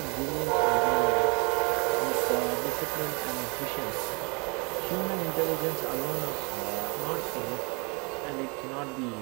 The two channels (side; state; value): left; quieter; 31.4 dB